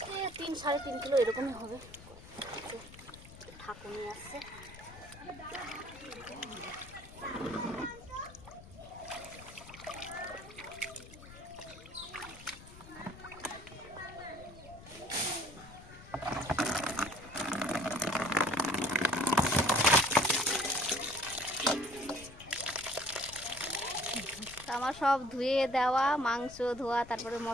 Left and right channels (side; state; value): left; noise; rumble, 17 dB below the sound